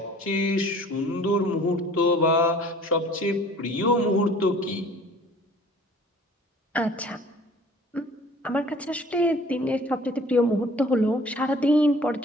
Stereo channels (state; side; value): normal; both; correlation 0.50